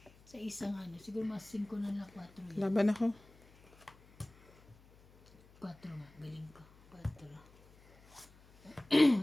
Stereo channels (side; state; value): left; noise; hum, 26 dB below the sound